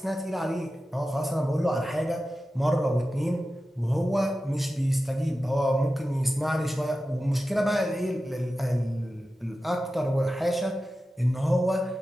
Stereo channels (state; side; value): normal; both; correlation 0.93